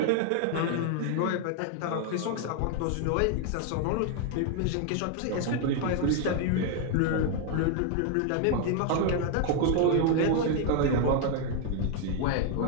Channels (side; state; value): both; different; correlation 0.00